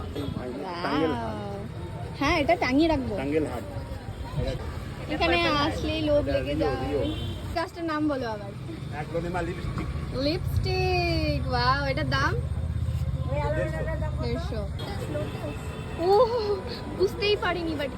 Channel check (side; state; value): both; identical; correlation 1.00